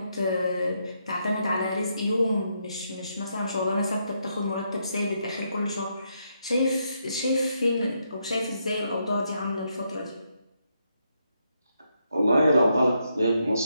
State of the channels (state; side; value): inverted; both; correlation -0.79